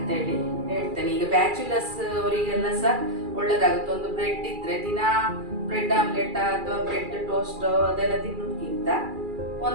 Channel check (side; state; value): left; late; 2.4 ms